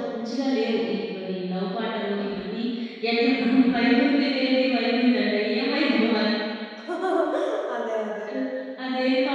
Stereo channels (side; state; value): both; identical; correlation 1.00